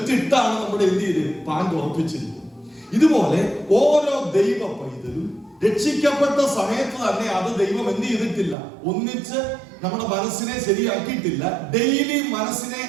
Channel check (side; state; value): left; drops out; at 8.6 s